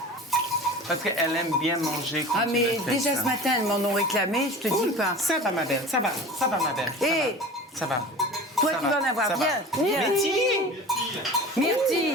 Parce qu'elle aime bien manger quand Ah, tu mais le fais, déjà ça. ce matin, elles m'en ont réclamé, je te dis pas. Ça va, ma belle, ça va, ma belle. ça Hé, va, ça va. toi, Ça tu va, vas en avoir. ça va. Viens, viens. Myrtille!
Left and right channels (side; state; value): both; normal; correlation 0.37